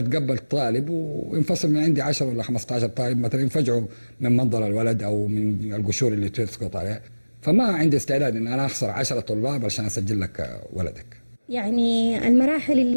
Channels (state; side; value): inverted; both; correlation -1.00